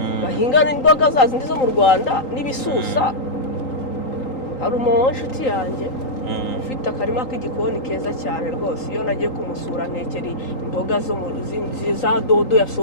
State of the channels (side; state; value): right; late; 3.9 ms